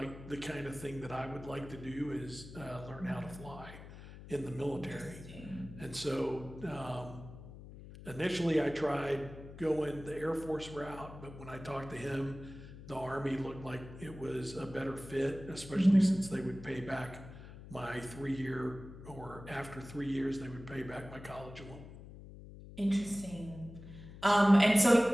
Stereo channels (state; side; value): noise; left; hum, 15 dB below the sound